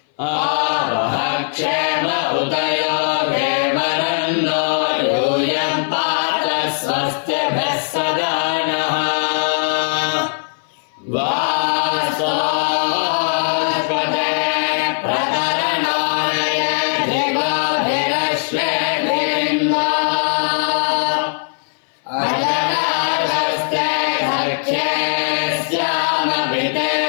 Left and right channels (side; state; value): right; silent; 59 dB below the other